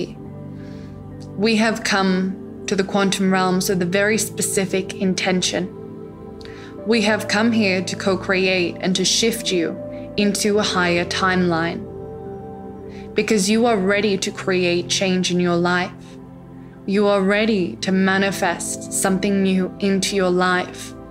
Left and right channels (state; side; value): identical; both; correlation 1.00